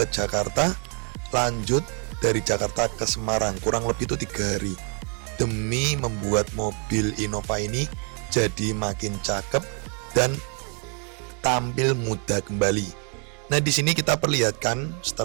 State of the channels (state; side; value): quieter; left; 39.6 dB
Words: Jakarta, lanjut dari Jakarta ke Semarang kurang lebih itu 3 hari demi membuat mobil Innova ini jadi makin cakep dan tampil muda kembali. Nah, di sini kita perlihatkan